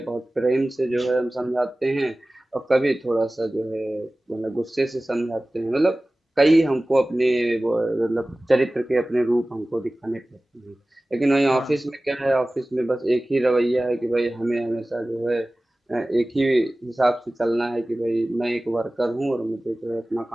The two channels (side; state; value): both; normal; correlation 0.97